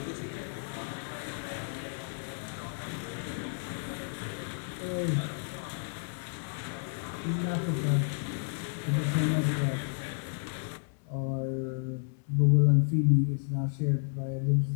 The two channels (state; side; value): silent; right; digital silence